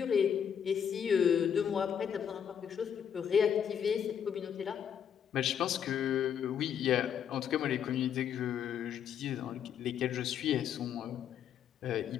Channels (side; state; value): right; quieter; 8.4 dB